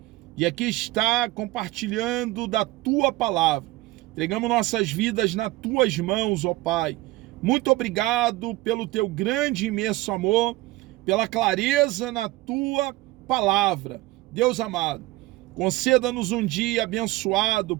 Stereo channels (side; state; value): left; quieter; 18.8 dB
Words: e aqui está compartilhando da tua palavra. Entregamos nossas vidas nas tuas mãos, ó Pai. Muito obrigado pelo teu grande e imenso amor, pela clareza na tua palavra. Deus amado, conceda-nos um dia abençoado,